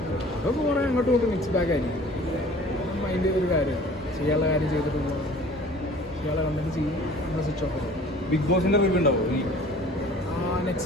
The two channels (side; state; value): both; normal; correlation 0.48